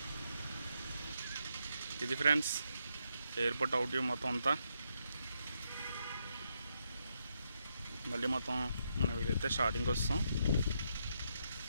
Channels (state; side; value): inverted; both; correlation -0.80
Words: ఇది ఫ్రెండ్స్ ఎయిర్పోర్ట్ అవుట్ వ్యూ మొత్తం అంతా. మళ్ళీ మొత్తం మనం వీలైతే స్టార్టింగ్కి వస్తాం.